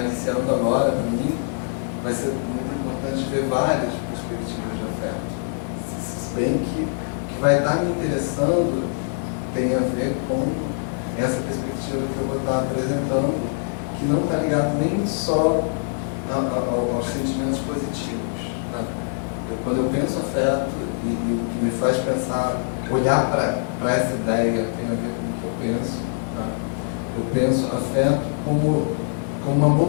agora, para mim, vai ser muito importante ver várias perspectivas de afeto. Se bem que o que vai estar me interessando tem a ver com essa perspectiva que eu vou estar apresentando, que não está ligado nem só aos sentimentos positivos. Né? Quando eu penso afeto, e o que me faz pensar, olhar para essa ideia tem a ver com o que eu penso. Tá? Eu penso afeto como uma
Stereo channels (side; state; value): right; silent; digital silence